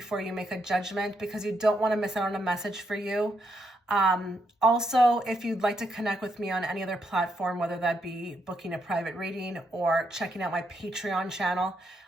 you make a judgment, because you don't want to miss out on a message for you. Also, if you'd like to connect with me on any other platform, whether that be booking a private reading or checking out my Patreon channel,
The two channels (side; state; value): both; normal; correlation 0.78